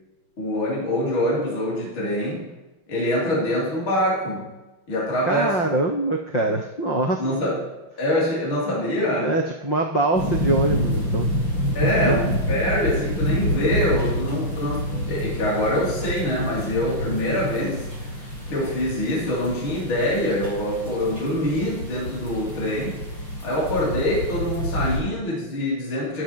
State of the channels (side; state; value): right; late; 5.8 ms